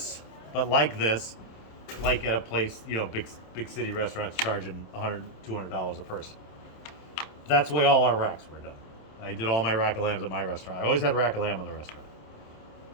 but like this, like at a place, big city restaurants charging $100, $200 a person. That's the way all our racks were done. I did all my rack of lambs at my restaurant. I always had rack of lamb in the restaurant.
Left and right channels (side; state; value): right; late; 27 ms